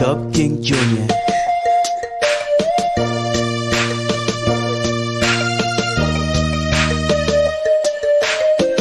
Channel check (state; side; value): identical; both; correlation 1.00